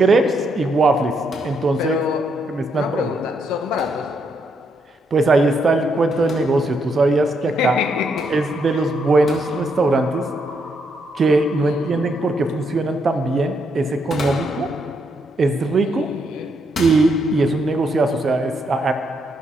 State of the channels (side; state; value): both; normal; correlation 0.77